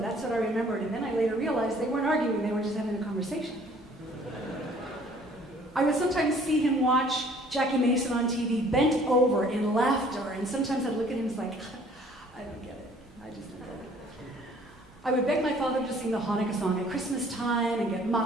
what I remembered, and then I later realized they weren't arguing, they were just having a conversation. I would sometimes see him watch Jackie Mason on TV, bent over in laughter, and sometimes I'd look at him and like, I don't get it. I just don't get it. I would beg my father to sing the Hanukkah song at Christmas time and get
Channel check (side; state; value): both; normal; correlation 0.56